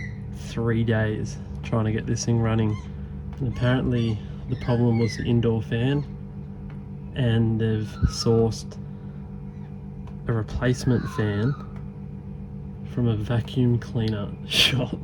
3 days trying to get this thing running, and apparently the problem was the indoor fan, and they've sourced a replacement fan from a vacuum cleaner shop,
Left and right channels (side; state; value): both; identical; correlation 1.00